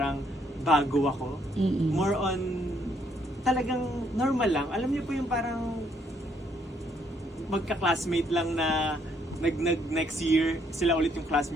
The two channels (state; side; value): normal; both; correlation 0.70